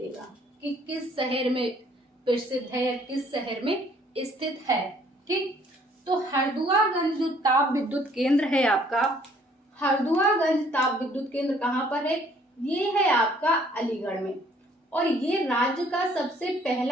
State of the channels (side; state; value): both; normal; correlation 0.61